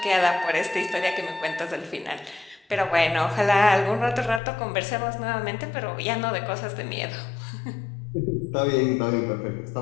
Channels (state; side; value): drops out; right; at 4.4 s